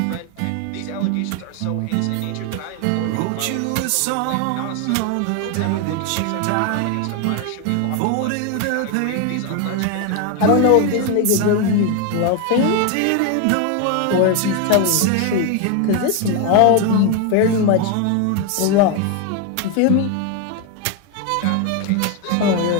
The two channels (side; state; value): both; different; correlation 0.01